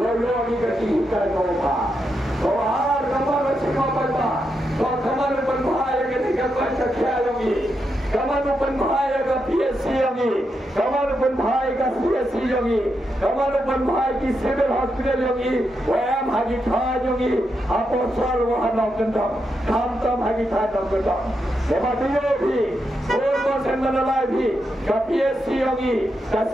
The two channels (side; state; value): both; normal; correlation 0.84